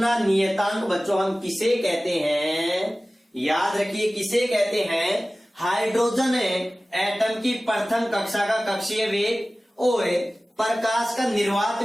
नियतांक बच्चों हम किसे कहते हैं, याद रखिए किसे कहते हैं, हाइड्रोजन एटम की प्रथम कक्षा का कक्षीय वेग और प्रकाश का निर्वात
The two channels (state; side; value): normal; both; correlation 0.97